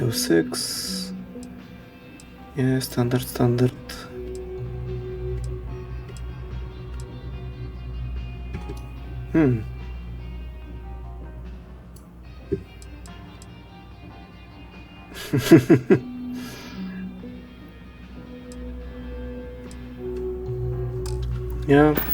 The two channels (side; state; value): both; identical; correlation 1.00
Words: 6. Yeah, standard. Yeah.